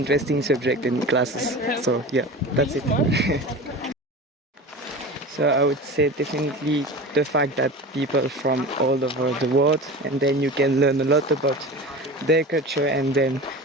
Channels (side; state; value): both; normal; correlation 0.33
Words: subject and classes. So yeah, that's it. So I would say definitely the fact that people from all over the world, and then you can learn a lot about their culture and then